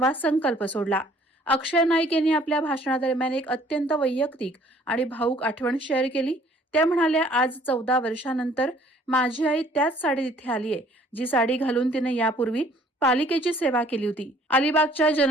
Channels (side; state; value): both; normal; correlation 0.58